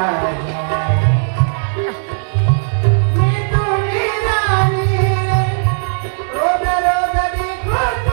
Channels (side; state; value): left; silent; digital silence